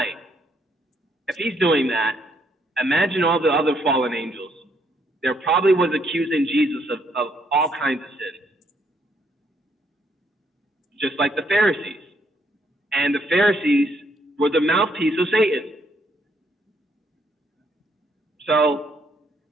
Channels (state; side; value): normal; both; correlation 0.71